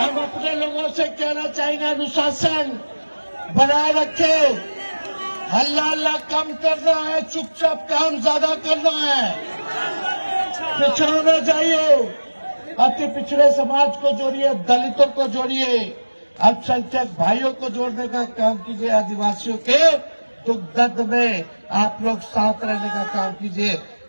अपने लोगों से कहना चाहेंगे, अनुशासन बनाए रखे, हल्ला हल्ला कम करना है, चुपचाप काम ज्यादा करना है, पिछड़ना चाहिए, अति पिछड़े समाज को जोड़िए, दलितों को जोड़िए, अल्पसंख्यक भाइयों को जोड़ने का काम कीजिए, आदिवासियों के दुख दर्द में आप लोग साथ रहने का काम कीजिए।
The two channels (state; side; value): inverted; both; correlation -1.00